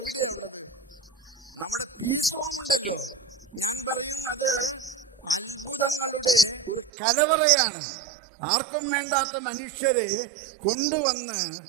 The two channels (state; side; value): drops out; left; at 6.9 s